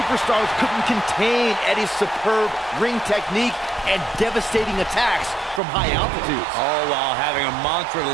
couldn't contain Eddie's superb ring technique and devastating attacks from high altitudes. All while having a mantra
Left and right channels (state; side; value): drops out; left; at 5.6 s